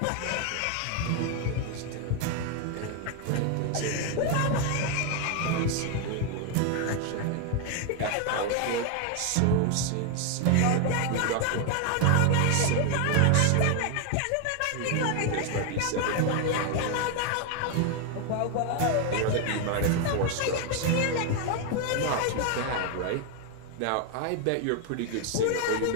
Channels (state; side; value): different; both; correlation 0.01